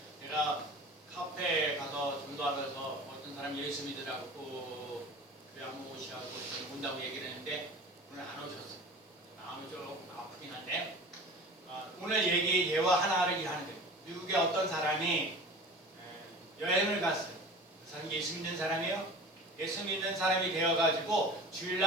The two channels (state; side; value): normal; both; correlation 0.39